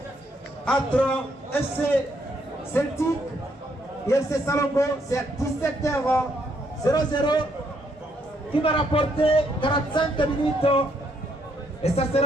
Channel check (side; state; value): both; normal; correlation 0.72